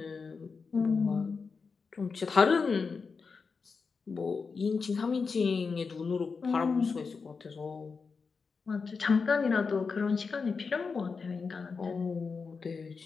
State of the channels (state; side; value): quieter; right; 5.0 dB